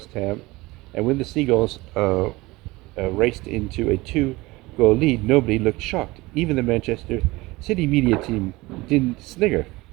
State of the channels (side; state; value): left; quieter; 21.2 dB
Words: Ham, and when the Seagulls raced into a two-goal lead, nobody looked shocked. Even the Manchester City media team didn't snigger.